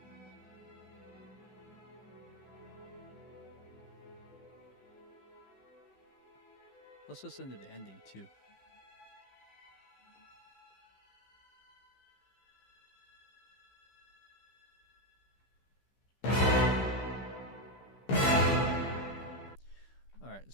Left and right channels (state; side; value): late; right; 15 ms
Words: Let's listen to the ending too. All right,